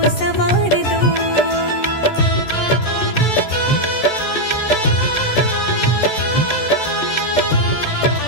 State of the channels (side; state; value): right; late; 14 ms